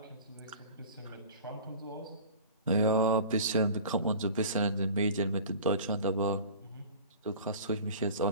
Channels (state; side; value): inverted; both; correlation -0.40